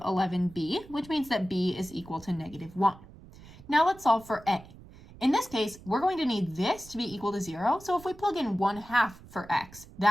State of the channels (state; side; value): noise; right; rumble, 20 dB below the sound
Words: which means that b is equal to negative 1. Now let's solve for a. In this case, we're going to need this to be equal to 0. So if we plug in 1/2 for x,